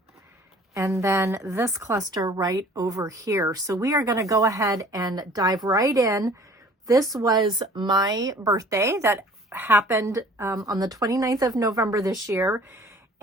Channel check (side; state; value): both; normal; correlation 0.50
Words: and then this cluster right over here. So we are going to go ahead and dive right in. This was my birthday that happened on the 29th of November this year.